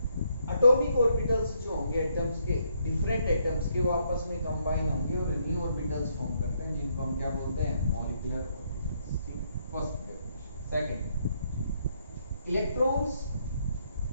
atomic orbitals जो होंगे एटम्स के, डिफरेंट एटम्स के, वो आपस में कंबाइन होंगे और न्यू ऑर्बिटल्स फॉर्म करते हैं, जिनको हम क्या बोलते हैं? Molecular orbitals. ठीक, first definition. Second, electrons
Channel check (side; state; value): both; inverted; correlation -0.73